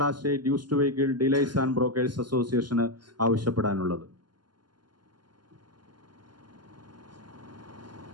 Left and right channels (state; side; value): late; left; 0.71 ms